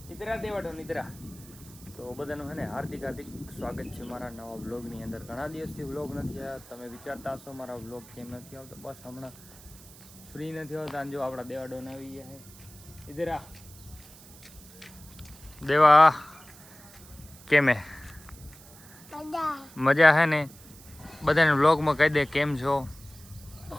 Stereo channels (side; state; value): right; noise; hiss, 20 dB below the sound